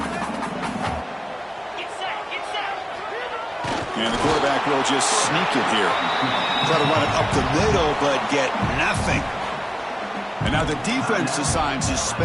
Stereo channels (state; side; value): identical; both; correlation 1.00